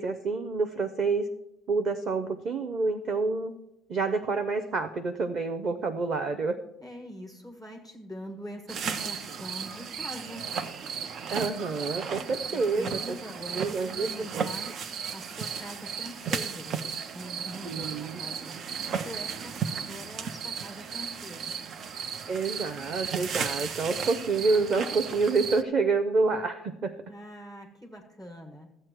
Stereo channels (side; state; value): left; quieter; 3.9 dB